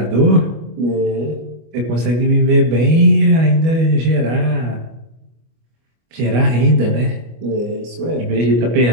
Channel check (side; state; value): left; late; 25 ms